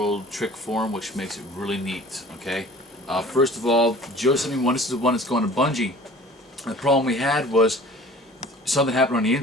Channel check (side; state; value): both; normal; correlation 0.46